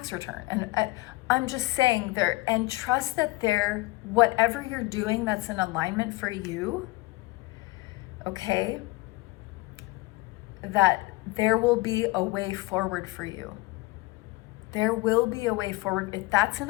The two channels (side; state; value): right; quieter; 21.4 dB